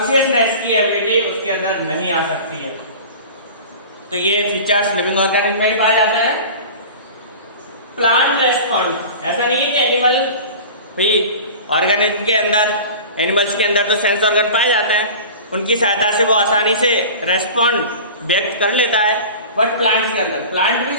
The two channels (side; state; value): both; inverted; correlation -0.36